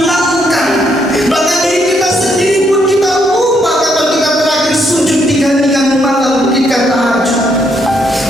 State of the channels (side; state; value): both; normal; correlation 0.74